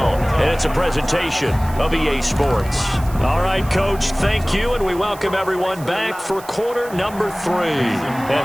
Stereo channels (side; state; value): right; noise; hiss, 19 dB below the sound